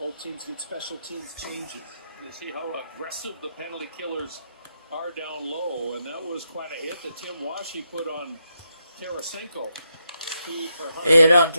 teams get special teams changes. You see how aggressive the penalty killers are down low, and that was quite a hit that Tim Washi put on Tarasenko. Hit on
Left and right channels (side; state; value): both; inverted; correlation -0.82